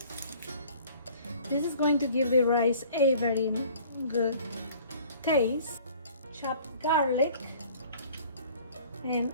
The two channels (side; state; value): both; inverted; correlation -0.51